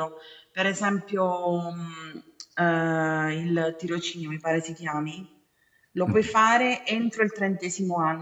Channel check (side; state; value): both; identical; correlation 1.00